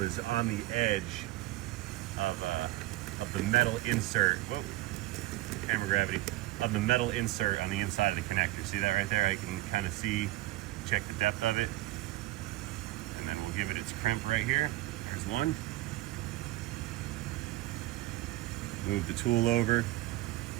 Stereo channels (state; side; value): quieter; left; 17.0 dB